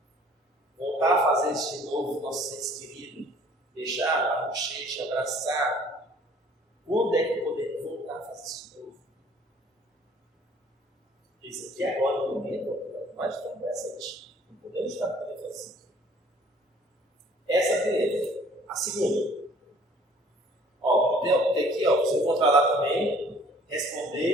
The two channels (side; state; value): both; normal; correlation 0.55